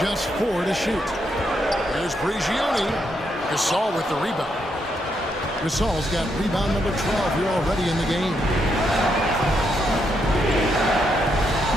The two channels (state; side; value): normal; both; correlation 0.78